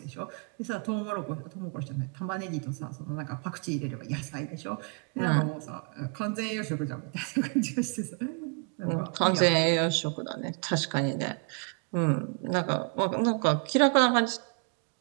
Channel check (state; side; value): quieter; left; 39.3 dB